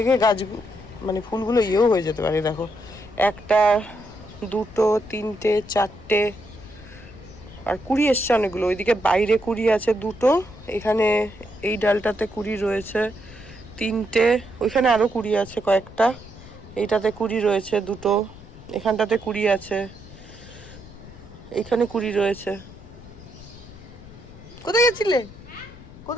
গাছ মানে ফুলগুলো ইয়েও হয়ে যেতে পারে। দেখো, একটা, দুটো, তিনটে, চারটে, আর কুড়ি এসছে অনেকগুলো। ওইদিকে বাইরে কুড়ি আছে দুটো, এখানে এই ডালটাতে কুড়ি রয়েছে তিনটে, ওইখানে আরও কুড়ি আছে কয়েকটা, এইটাতে কুড়ি রয়েছে দুটো, এখানটাতে কুড়ি আছে, এখানে কুড়ি রয়েছে। কোথায় গেছিলে?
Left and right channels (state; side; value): noise; left; rumble, 18 dB below the sound